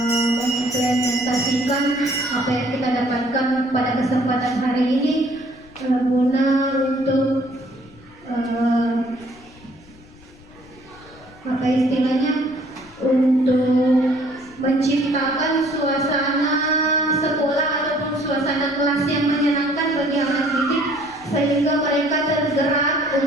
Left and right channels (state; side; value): noise; left; rumble, 24 dB below the sound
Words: apa yang kita dapatkan pada kesempatan hari ini, guna untuk apa istilahnya, untuk menciptakan suasana sekolah ataupun suasana kelas yang menyenangkan bagi anak didik, sehingga mereka tergerak